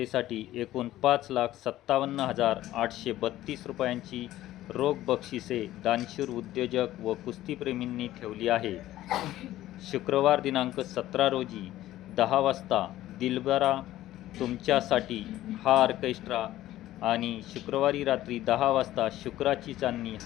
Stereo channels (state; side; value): quieter; right; 14.6 dB